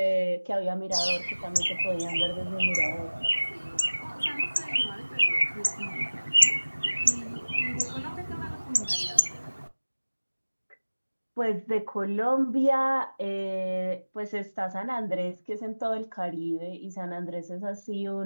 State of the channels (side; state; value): both; inverted; correlation -1.00